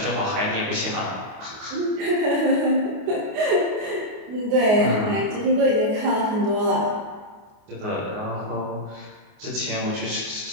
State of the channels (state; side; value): late; left; 29 ms